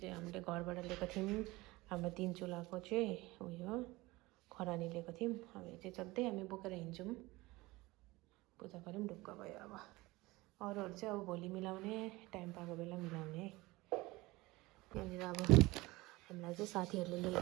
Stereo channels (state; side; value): quieter; left; 21.0 dB